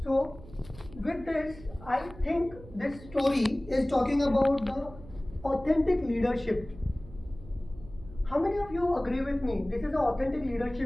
So with this, I think this story is talking about the authentic leadership. How many of you agree with me? This is the authentic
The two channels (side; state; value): right; noise; hum, 18 dB below the sound